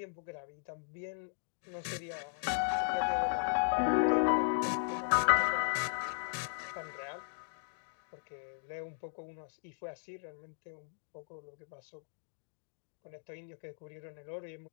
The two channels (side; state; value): right; silent; digital silence